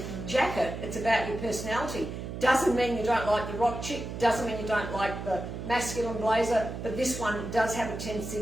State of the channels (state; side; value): noise; right; hum, 7 dB below the sound